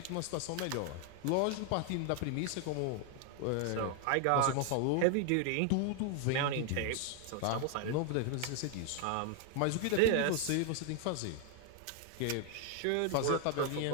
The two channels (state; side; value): different; both; correlation 0.00